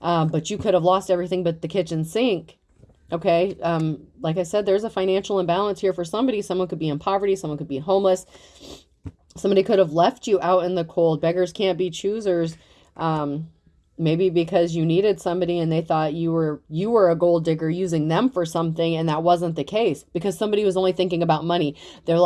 But you could have lost everything but the kitchen sink. Okay. Like I said, there's a financial imbalance here for somebody. Someone could be in poverty. Someone could be homeless. Somebody could have left you out in the cold. Beggars can't be choosers. Maybe because you needed somebody and they thought you were a gold digger using them for something, and that wasn't the case because somebody was only thinking about money. They're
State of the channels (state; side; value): identical; both; correlation 1.00